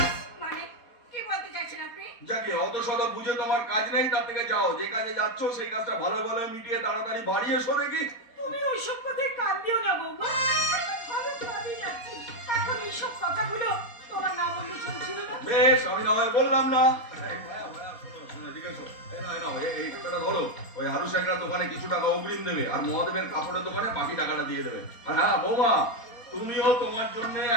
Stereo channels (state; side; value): late; right; 4.1 ms